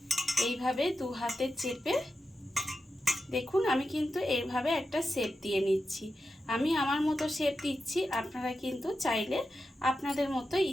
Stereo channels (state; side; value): normal; both; correlation 0.90